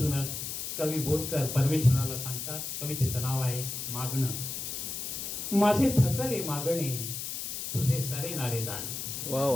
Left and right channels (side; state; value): left; noise; hiss, 5 dB below the sound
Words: कवी बोरकर परमेश्वराला सांगतात. कवितेचं नाव आहे मागणं. माझे थकले मागणे तुझे सरेनारे दान, वा